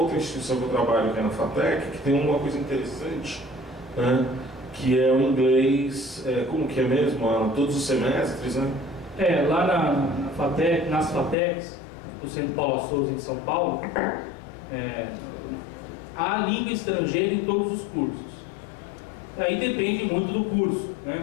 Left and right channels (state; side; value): drops out; right; at 11.4 s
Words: instituição que eu trabalho, que é na FATEC, que tem uma coisa interessante, né? Que é o inglês, como que é mesmo? Todos os semestres, né? Lá na FATEC, nas FATECs, do Centro Paulo Souza em São Paulo, há língua estrangeira em todos os cursos. Aí depende muito do curso,